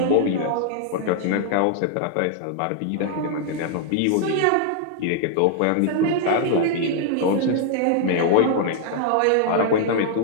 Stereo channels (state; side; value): different; both; correlation 0.00